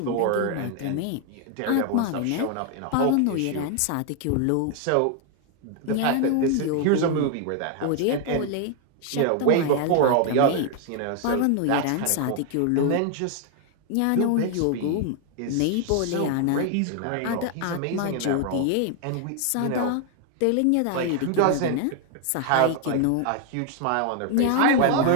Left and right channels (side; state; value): both; different; correlation 0.00